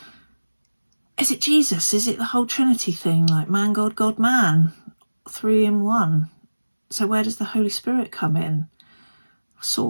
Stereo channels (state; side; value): inverted; both; correlation -1.00